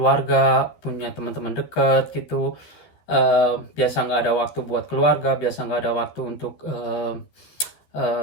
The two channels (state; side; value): late; right; 13 ms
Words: punya teman-teman dekat gitu. Biasa nggak ada waktu buat keluarga, biasa nggak ada waktu untuk